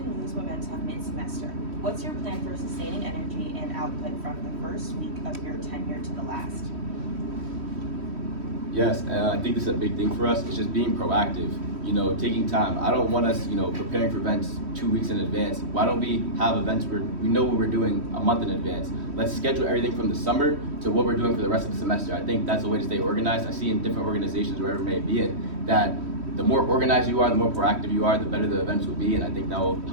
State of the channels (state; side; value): late; left; 3.1 ms